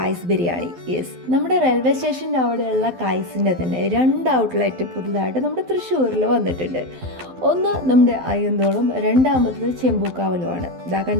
ബിരിയാണി. യെസ്, നമ്മുടെ റെയിൽവേ സ്റ്റേഷൻ്റെ അവിടെയുള്ള കായ്സിൻ്റെ തന്നെ 2 ഔട്ട്ലെറ്റ് പുതുതായിട്ട് നമ്മുടെ തൃശ്ശൂരിൽ വന്നിട്ടുണ്ട്. ഒന്ന് നമ്മുടെ അയ്യന്തോളും, രണ്ടാമത്തത് ചെമ്പൂക്കാവലുമാണ്. ഇതാ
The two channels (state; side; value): late; left; 12 ms